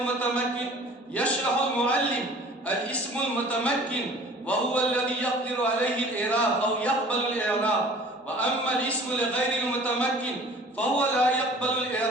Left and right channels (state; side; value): normal; both; correlation 0.47